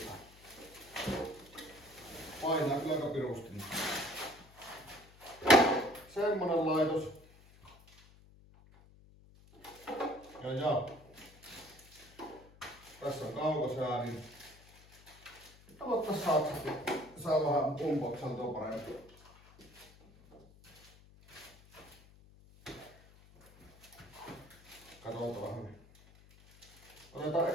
Painaa kyllä aika pirusti. Semmonen laitos. Ja. Tässä on kaukosäädin. Aloittais saksasti. Saa vähän unboxantua paremmin. Katsotaan vähän. Otetaan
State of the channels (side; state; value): left; noise; hum, 24 dB below the sound